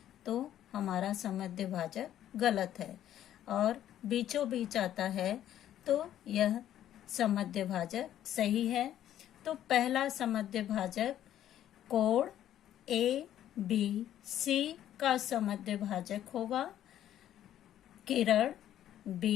तो हमारा समद्य भाजक गलत है, और बीचों बीच आता है तो यह समद्य भाजक सही है। तो पहला समद्य भाजक कोण ए बी सी का समद्य भाजक होगा किरण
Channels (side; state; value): right; quieter; 11.6 dB